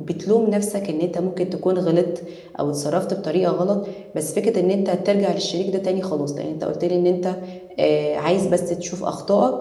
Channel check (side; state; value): both; identical; correlation 1.00